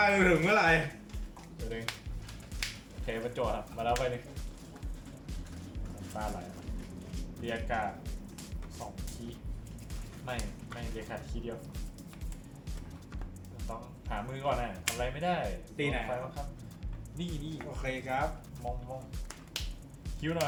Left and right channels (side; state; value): both; identical; correlation 1.00